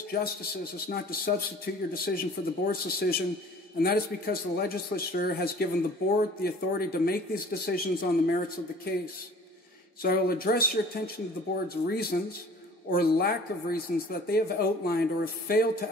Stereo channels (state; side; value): normal; both; correlation 0.48